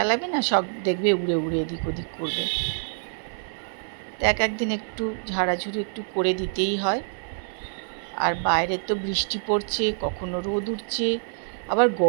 না, সব দেখবে উড়ে উড়ে এদিক ওদিক করবে। তো একদিন একটু ঝাড়াঝুড়ি একটু করে দিতেই হয়। আর বাইরে তো বৃষ্টি পড়ছে, কখনো রোদ উঠছে, আবার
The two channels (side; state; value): left; silent; 61 dB below the other